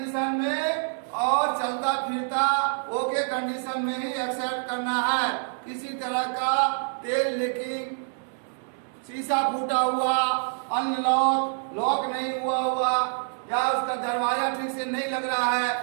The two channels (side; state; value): left; silent; digital silence